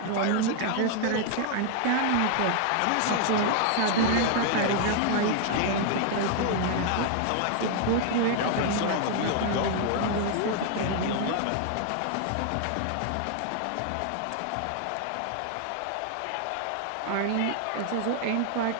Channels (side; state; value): both; different; correlation 0.00